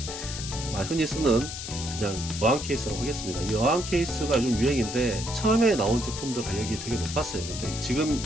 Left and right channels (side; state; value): left; noise; hiss, 8 dB below the sound